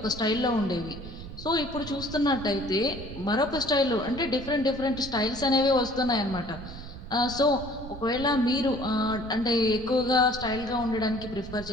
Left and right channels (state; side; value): noise; right; rumble, 12 dB below the sound